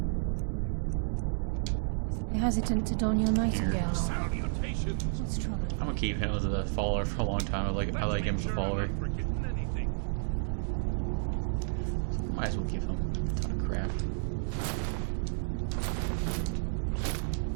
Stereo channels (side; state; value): left; silent; digital silence